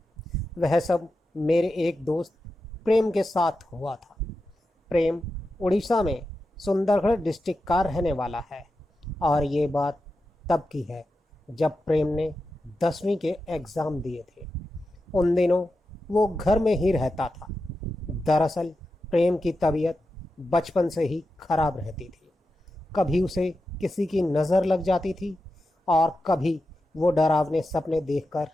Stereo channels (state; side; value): normal; both; correlation 0.90